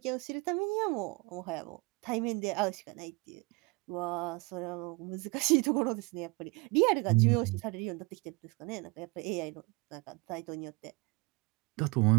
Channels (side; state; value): left; quieter; 26.5 dB